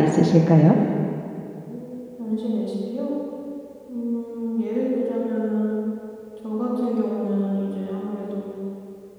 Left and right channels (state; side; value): identical; both; correlation 1.00